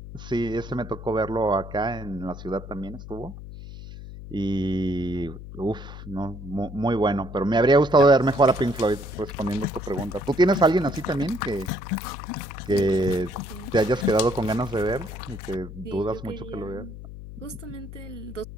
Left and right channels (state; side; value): noise; left; hum, 12 dB below the sound